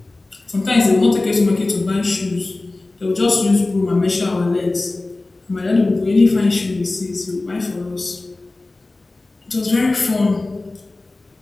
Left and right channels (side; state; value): right; quieter; 3.1 dB